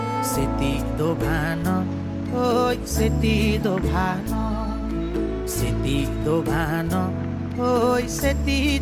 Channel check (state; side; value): identical; both; correlation 1.00